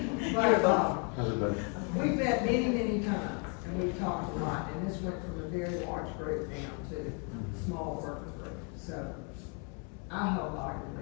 But, Everybody. we've met many, many times, and we've talked a lot, and this went from a very large group down to a small working group. So, I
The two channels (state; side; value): quieter; right; 37.8 dB